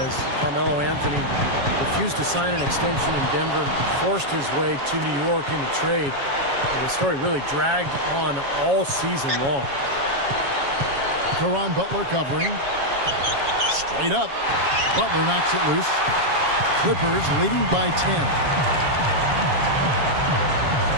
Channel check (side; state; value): left; late; 7.2 ms